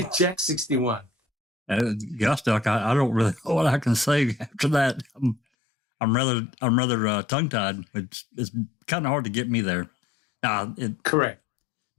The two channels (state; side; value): drops out; right; at 5.4 s